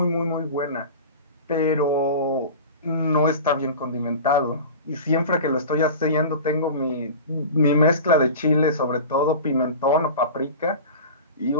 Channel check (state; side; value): inverted; both; correlation -0.34